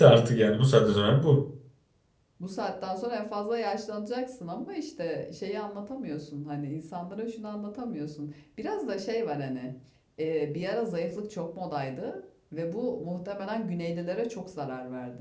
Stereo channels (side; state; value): both; identical; correlation 1.00